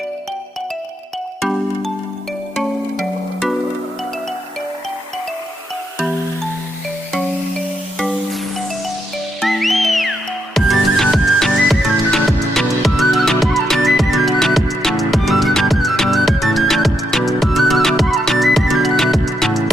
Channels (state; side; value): normal; both; correlation 0.80